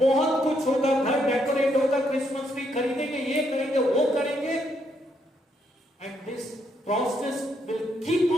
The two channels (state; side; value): normal; both; correlation 0.75